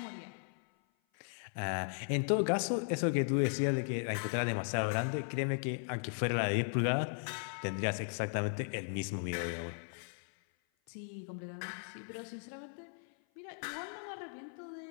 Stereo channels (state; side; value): silent; right; 53 dB below the other